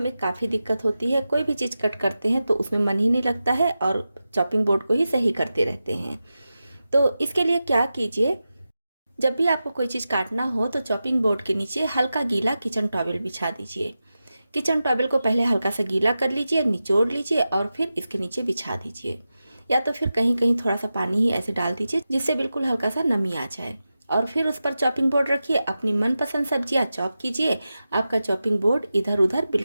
काफ़ी दिक्कत होती है। कोई भी चीज़ कट करते हैं तो उसमें मन ही नहीं लगता है और चॉपिंग बोर्ड को ही सही करते रहते हैं। तो इसके लिए क्या कीजिए, जब भी आपको कोई चीज़ काटना हो तो चॉपिंग बोर्ड के नीचे हल्का गीला किचन टॉवल बिछा दीजिए। किचन टॉवल को पहले हल्का सा गीला कर लीजिए, निचोड़ लीजिए और फिर इसके नीचे बिछा दीजिए, या तो फिर कहीं कहीं थोड़ा सा पानी ही ऐसे डाल दीजिए जिससे बिल्कुल हल्का सा नमी आ जाए। और फिर उस पर चॉपिंग बोर्ड रखिए, अपनी मनपसंद सब्जियां चॉप कीजिए। आपका चॉपिंग बोर्ड इधर उधर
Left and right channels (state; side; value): inverted; both; correlation -0.92